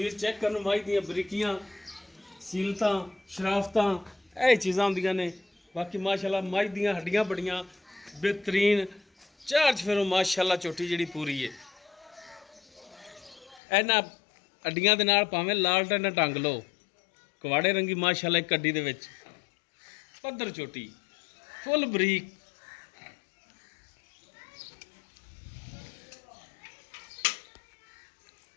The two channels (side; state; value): right; drops out; at 13.6 s